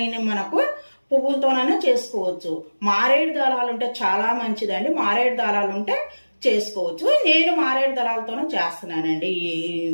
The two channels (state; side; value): inverted; both; correlation -1.00